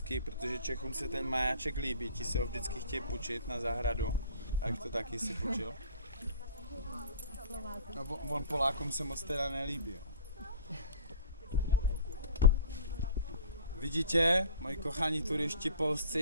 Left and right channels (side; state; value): both; inverted; correlation -0.46